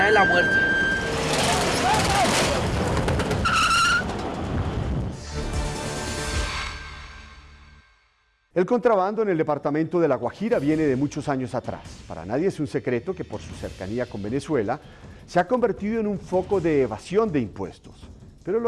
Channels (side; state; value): both; identical; correlation 1.00